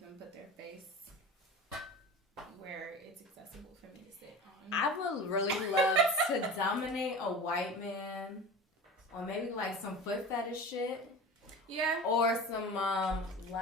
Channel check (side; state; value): both; normal; correlation 0.34